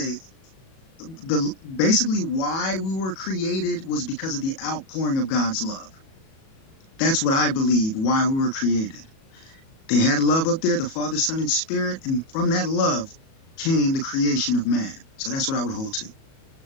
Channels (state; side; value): late; right; 37 ms